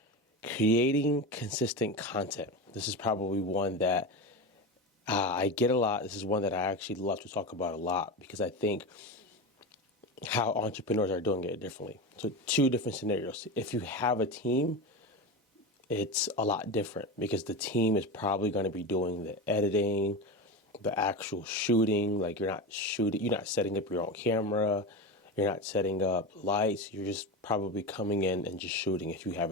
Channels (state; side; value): normal; both; correlation 0.22